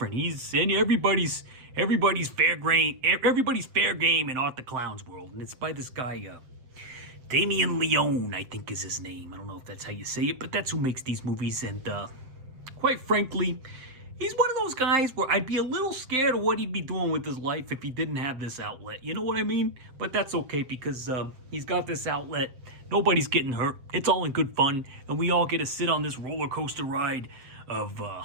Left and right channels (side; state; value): left; late; 7.6 ms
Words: in everybody's fair game in Art the Clown's world, and it's by this guy, Damien Leone, I think is his name. I don't know if that's how you say it, but that's who makes these movies. And quite frankly, he's one of those guys where I'd be a little scared of what he'd be doing with his life if he didn't have this outlet. You know what I mean? But that's okay because he's got this outlet. Nobody's getting hurt. It's all in good fun, and we all get to sit on this roller coaster ride of